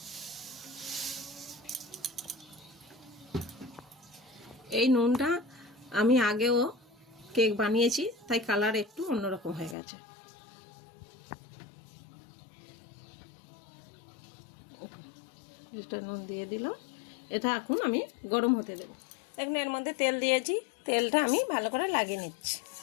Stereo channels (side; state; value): right; drops out; at 9.8 s